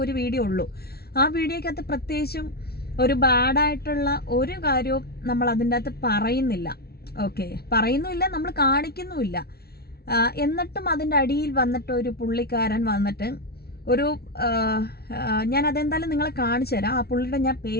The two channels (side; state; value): right; late; 0.45 ms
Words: ഒരു വീഡിയോ ഉള്ളൂ. ആ വീഡിയോക്കകത്ത് പ്രത്യേകിച്ചും ഒരു ബാഡായിട്ടുള്ള ഒരു കാര്യവും നമ്മൾ അതിൻ്റെ അകത്ത് പറയുന്നില്ല. ഓക്കെ, പറയുന്നുമില്ല, നമ്മൾ കാണിക്കുന്നുമില്ല. എന്നിട്ടും അതിൻ്റെ അടിയിൽ വന്നിട്ട് ഒരു പുള്ളിക്കാരൻ വന്നിട്ട് ഒരു ഞാൻ അതെന്തായാലും നിങ്ങളെ കാണിച്ചു തരാം. ആ പുള്ളിയുടെ ഞാൻ